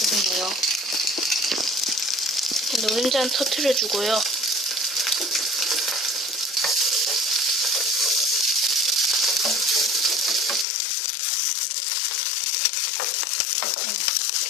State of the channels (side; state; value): right; drops out; at 10.7 s